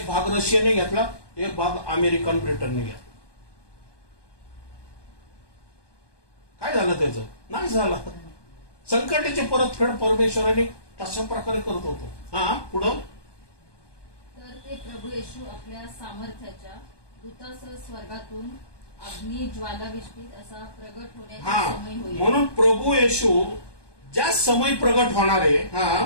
भाग रशियाने घेतला, एक भाग अमेरिकन ब्रिटनने घेतला. काय झालं? त्याचं नाश झाला. संकटाची परतफेड परमेश्वराने तशा प्रकारे करत होतो. हा, पुढं. तर ते प्रभू येशू आपल्या सामर्थ्याच्या दूतासह स्वर्गातून अग्नी ज्वालाविष्टीत असा प्रगट होण्याचा समय होईल. म्हणून प्रभू येशू ज्या समय प्रगट होणार आहे,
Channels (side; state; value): right; late; 1.2 ms